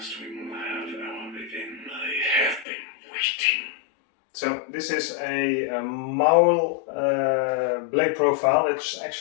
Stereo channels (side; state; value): right; drops out; at 2.7 s